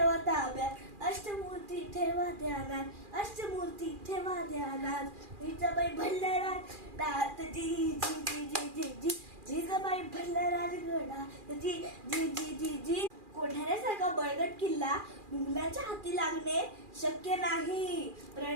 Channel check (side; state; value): left; late; 2.4 ms